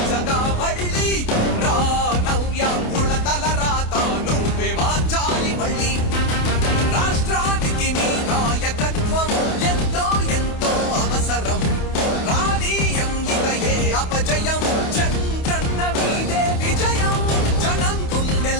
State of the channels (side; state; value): right; late; 28 ms